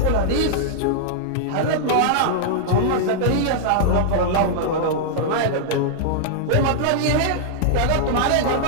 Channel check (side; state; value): both; different; correlation -0.01